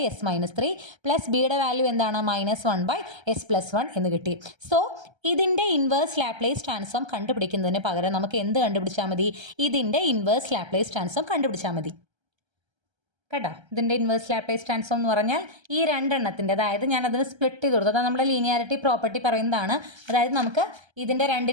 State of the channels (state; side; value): late; left; 1.3 ms